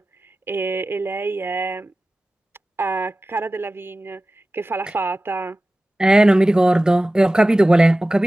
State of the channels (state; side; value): normal; both; correlation 0.96